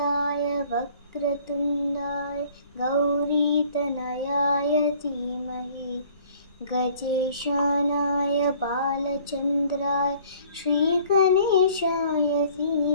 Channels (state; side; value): inverted; both; correlation -0.55